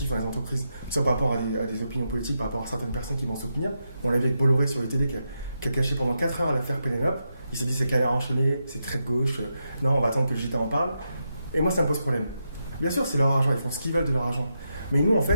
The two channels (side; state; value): both; inverted; correlation -0.85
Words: dans les entreprises, soit par rapport à des opinions politiques, par rapport à certaines personnes qui vont soutenir. On l'a vu avec Bolloré sur UTD qui a caché pendant 4 heures l'affaire Pénélope. Il s'est dit c'est canard enchaîné, c'est très de gauche, non on va attendre que le JT en parle. Et moi ça me pose problème. Bien sûr c'est leur argent, ils font ce qu'ils veulent de leur argent. Mais nous en